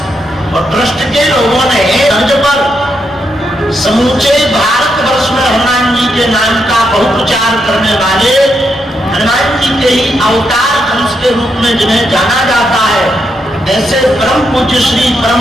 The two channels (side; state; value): both; normal; correlation 0.81